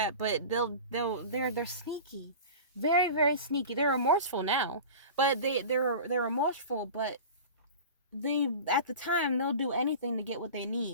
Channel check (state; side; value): inverted; both; correlation -0.34